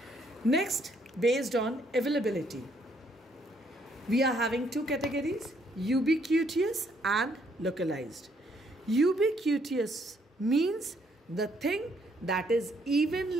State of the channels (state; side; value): normal; both; correlation 0.69